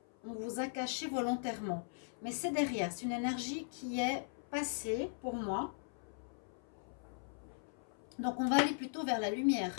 caché volontairement. Mais c'est derrière, c'est une énergie qui est passée pour moi. Donc on va aller plutôt vers la lumière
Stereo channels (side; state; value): right; silent; 52 dB below the other